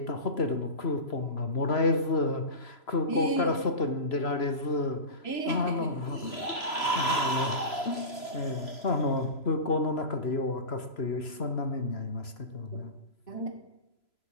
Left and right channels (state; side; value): late; right; 3.0 ms